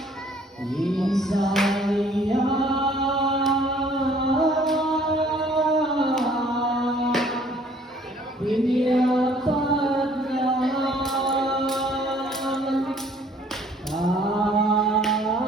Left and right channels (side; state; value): both; normal; correlation 0.58